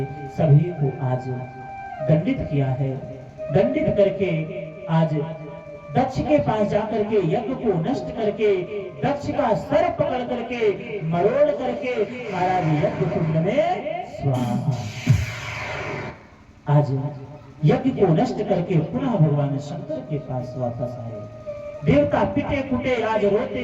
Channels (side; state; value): both; identical; correlation 1.00